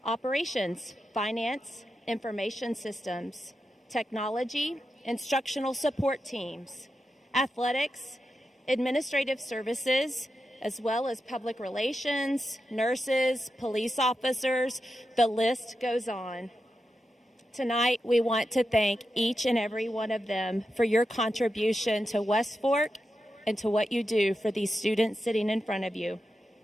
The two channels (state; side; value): normal; both; correlation 0.88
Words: operations, finance, information systems, technology, instructional support teams, athletics, administrative services, as well as public relations, nurses, police officers, the list goes on. Tonight, we want to thank each and every one of them for your contribution to West Fork and to what you do for these students sitting in front of you.